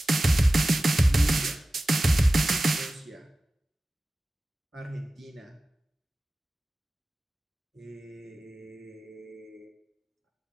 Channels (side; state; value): both; normal; correlation 0.96